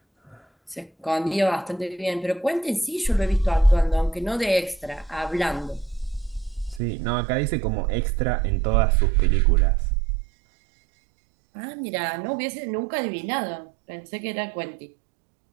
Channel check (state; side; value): drops out; left; at 6.8 s